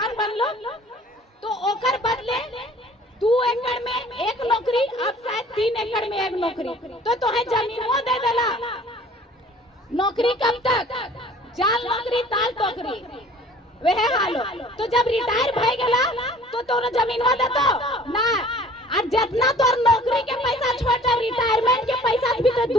बनलो तो ओकर बदले 2 एकड़ में 1 नौकरी, अब शायद 3 एकड़ में 1 नौकरी, तो तोहे जमीनवा दे देला। नौकरी कब तक? जाल नौकरी ताल टोकरी वह हालो। तो जब रिटायर भय गला तो तोरा जमीनवा देतो ना। और जितना तोर नौकरी के पैसा छोटा रिटायरमेंट के पैसा भी तो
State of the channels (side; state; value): both; normal; correlation 0.50